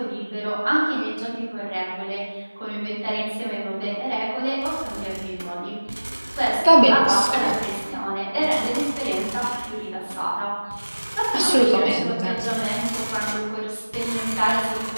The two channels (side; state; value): both; inverted; correlation -1.00